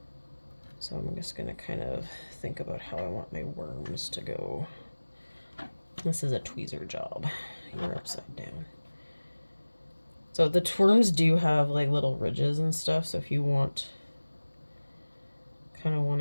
So I'm just gonna kind of think about how I want my worms to go. This is a tweezer job. You're upside down. So the worms do have like little ridges and stuff, so if you kind of want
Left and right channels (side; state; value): both; inverted; correlation -1.00